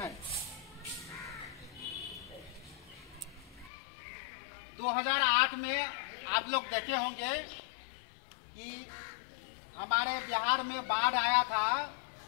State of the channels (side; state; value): right; drops out; at 3.7 s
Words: 2008 में आप लोग देखे होंगे कि हमारे बिहार में बाढ़ आया था,